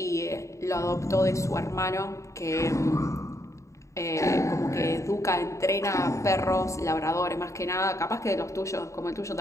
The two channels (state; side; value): late; right; 0.15 ms